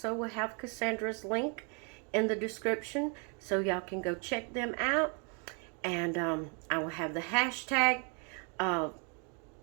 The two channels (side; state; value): left; quieter; 36.8 dB